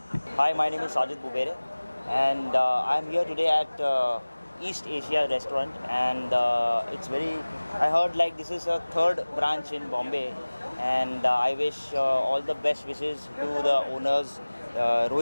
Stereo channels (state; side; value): inverted; both; correlation -1.00